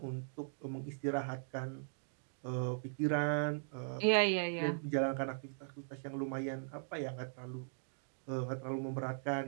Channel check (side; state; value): left; silent; digital silence